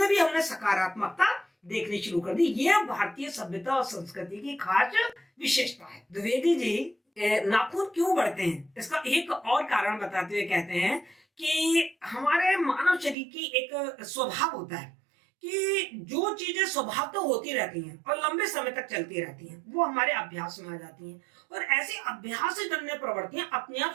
भी हमने सकारात्मकता देखनी शुरू कर दी। यह भारतीय सभ्यता और संस्कृति की खास विशेषता है। द्विवेदी जी नाखून क्यों बढ़ते हैं इसका एक और कारण बताते हुए कहते हैं कि हमारे मानव शरीर की एक स्वभाव होता है कि जो चीजें स्वभाव तो होती रहती हैं और लंबे समय तक चलती रहती हैं वो हमारे अभ्यास में आ जाती हैं, और ऐसी अभ्यास से जन्य प्रवृत्तियां अपने आप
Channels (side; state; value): left; drops out; at 13.2 s